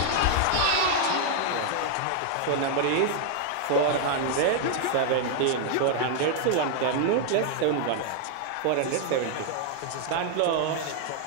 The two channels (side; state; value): both; different; correlation 0.00